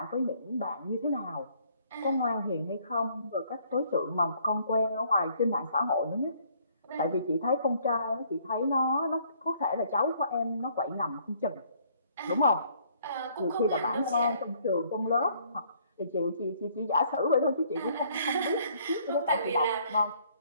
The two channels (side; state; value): both; inverted; correlation -0.63